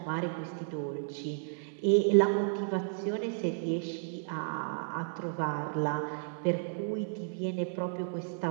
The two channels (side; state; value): left; silent; 56 dB below the other